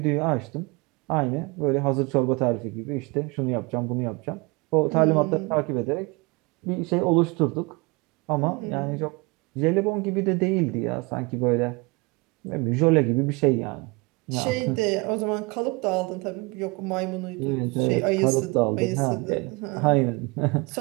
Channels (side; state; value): left; quieter; 26.9 dB